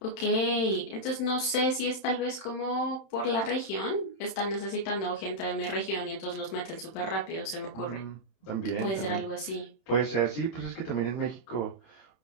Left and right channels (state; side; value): late; right; 31 ms